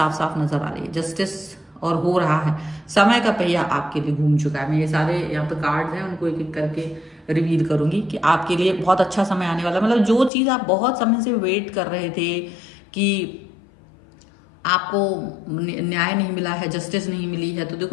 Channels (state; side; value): drops out; right; at 10.3 s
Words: साफ नजर आ रही है, जस्टिस और हो रहा है। समय का पहिया आपके लिए घूम चुका है। मैं ये सारे यहाँ पे कार्ड्स हैं उनको एक एक करके रिवील करूंगी कि आपके लिए बहुत अच्छा समय आने वाला है। मतलब जो चीज़ आप बहुत समय से वेट कर रहे थे कि आपको न्याय नहीं मिला है, जस्टिस नहीं मिली है, तो